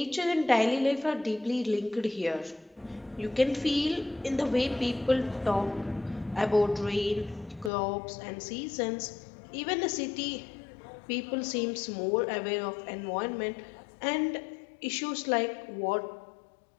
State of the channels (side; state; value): right; drops out; at 7.7 s